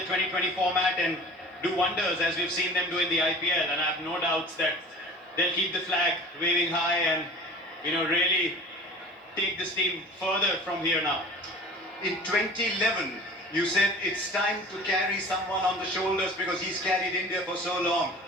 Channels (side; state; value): both; normal; correlation 0.41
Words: 2020 format and do wonders as we've seen them do in the IPL. And I have no doubts that they'll keep the flag waving high and really take this team further from here now. In 2011, you said it's time to carry someone on the shoulders because he's carried India for so long.